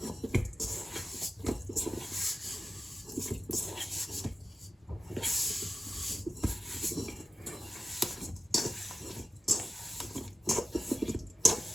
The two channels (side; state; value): both; normal; correlation 0.93